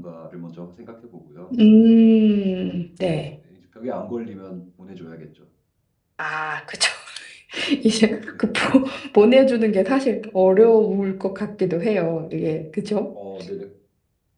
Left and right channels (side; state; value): both; identical; correlation 1.00